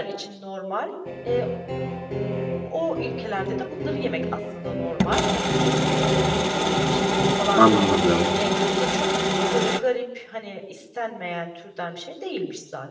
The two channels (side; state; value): both; identical; correlation 1.00